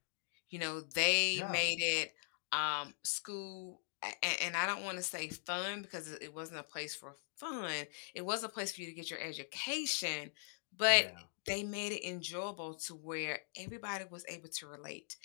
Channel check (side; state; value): right; silent; digital silence